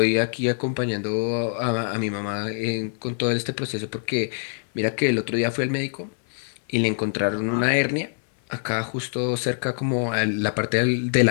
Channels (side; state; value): right; silent; 62 dB below the other